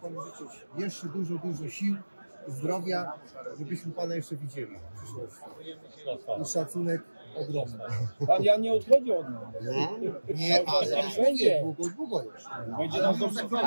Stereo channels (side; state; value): both; inverted; correlation -1.00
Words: życzyć jeszcze dużo sił, zdrowia, żebyśmy pana jeszcze widzieli w przyszłości. I szacunek ogromny. Pan Jan nie odchodzi od nas. Nie, ale Będzie. Długo jeszcze. Będzie nas